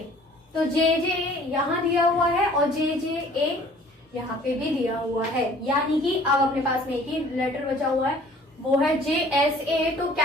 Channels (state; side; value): normal; both; correlation 0.52